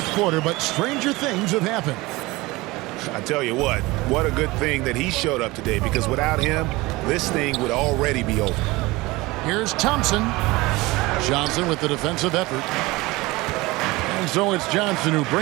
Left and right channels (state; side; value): quieter; left; 21.4 dB